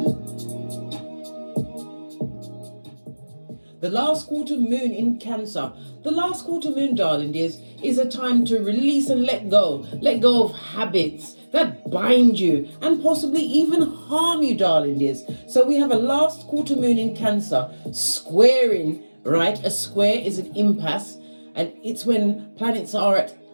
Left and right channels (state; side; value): inverted; both; correlation -1.00